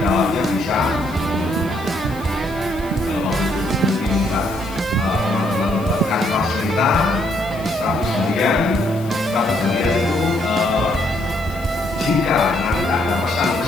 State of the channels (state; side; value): noise; left; hiss, 21 dB below the sound